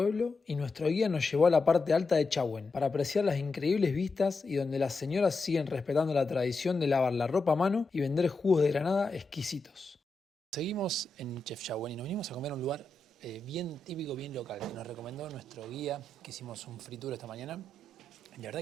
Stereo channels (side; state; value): right; quieter; 3.3 dB